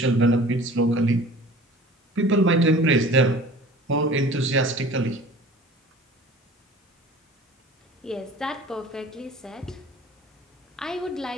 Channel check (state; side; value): normal; both; correlation 0.44